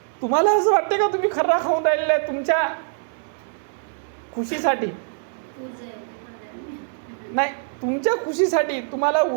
तुम्हाला असं वाटते का तुम्ही खर्रा खाऊन राहिलेला आहे तुमच्या खुशीसाठी? नाही, तुमच्या खुशीसाठी, तुम्हाला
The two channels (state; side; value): silent; left; digital silence